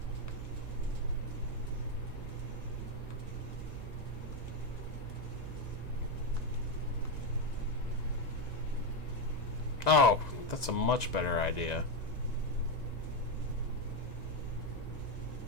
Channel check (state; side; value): late; right; 1.9 ms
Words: Oh, that's a much better idea.